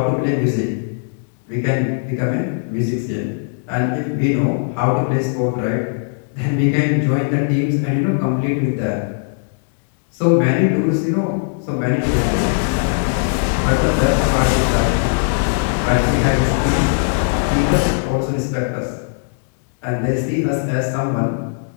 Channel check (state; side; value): silent; right; digital silence